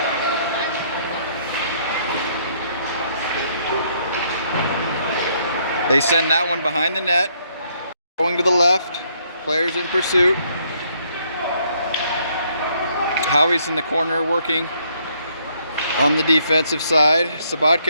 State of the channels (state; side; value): inverted; both; correlation -0.68